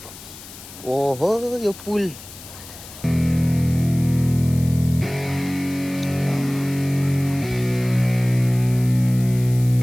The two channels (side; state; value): left; noise; hiss, 17 dB below the sound